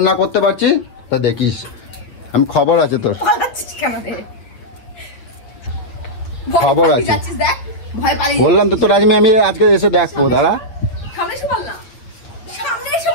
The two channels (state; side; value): late; right; 8.6 ms